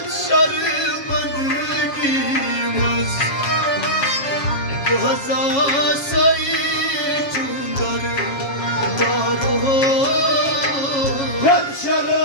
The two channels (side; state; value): right; late; 7.3 ms